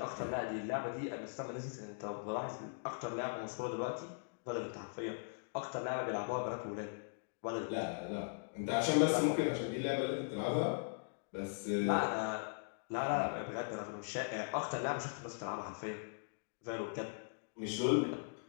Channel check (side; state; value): right; silent; digital silence